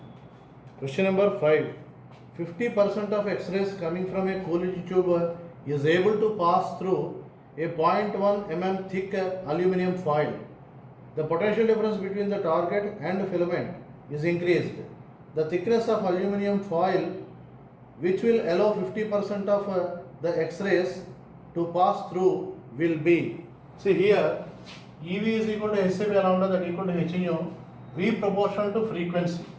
Question number 5. 50% of X-rays coming from a Coolidge tube is able to pass through a 0.1 mm thick aluminum foil. The potential difference between the target and filament is increased. The thickness of aluminum foil, which will allow 50% of the X-rays to pass through, will be. See here, EV is equal to Hc by lambda, that equal to h nu, V proportional to frequency,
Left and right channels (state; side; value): identical; both; correlation 1.00